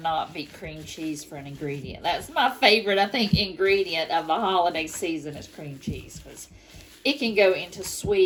beat cream cheese for an ingredient. That's my favorite, I think, ingredient of the holiday season is cream cheese, because it can go into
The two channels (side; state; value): both; identical; correlation 1.00